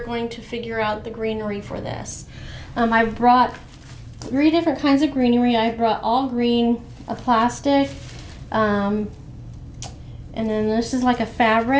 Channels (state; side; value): identical; both; correlation 1.00